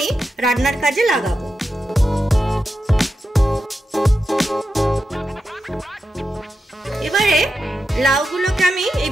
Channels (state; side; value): normal; both; correlation 0.89